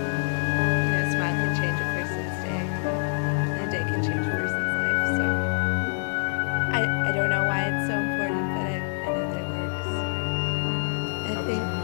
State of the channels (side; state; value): right; silent; 61 dB below the other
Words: You know, a smile can change a person's day, and a day can change a person's life, so. I don't know why it's so important, but I know that it works.